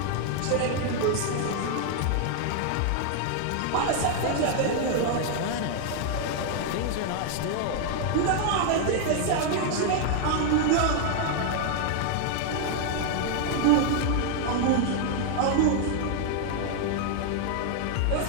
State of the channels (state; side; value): different; both; correlation 0.00